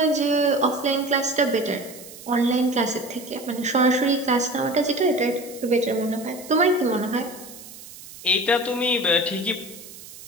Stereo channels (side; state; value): right; noise; hiss, 17 dB below the sound